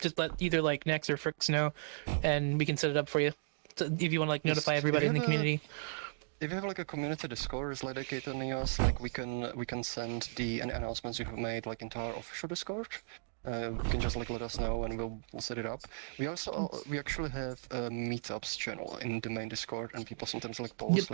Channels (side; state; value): left; silent; digital silence